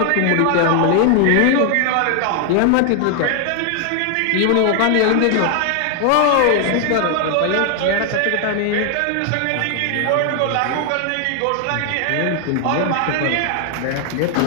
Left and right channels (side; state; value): both; different; correlation 0.00